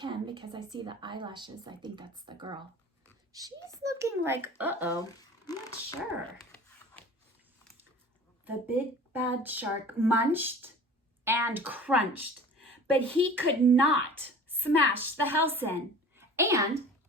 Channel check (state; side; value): normal; both; correlation 0.43